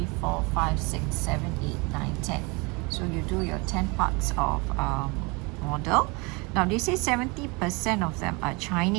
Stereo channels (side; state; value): left; quieter; 28.3 dB